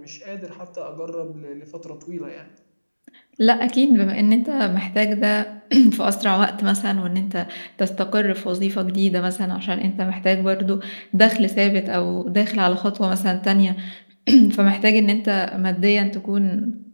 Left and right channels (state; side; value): inverted; both; correlation -1.00